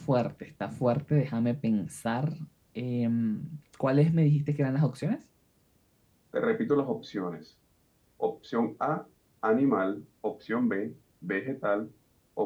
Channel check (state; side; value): identical; both; correlation 1.00